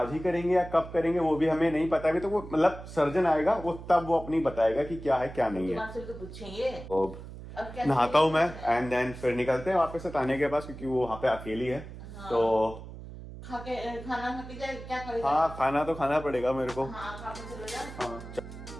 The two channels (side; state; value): right; noise; hum, 13 dB below the sound